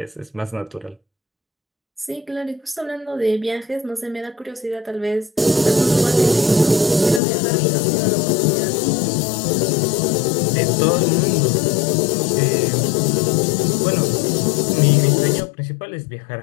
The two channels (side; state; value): right; drops out; at 7.2 s